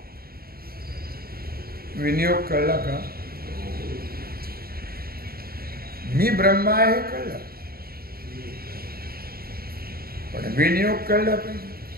विनियोग कळला का? मी ब्रह्म आहे कळलं, पण विनियोग कळला पाहिजे.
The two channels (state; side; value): late; left; 0.44 ms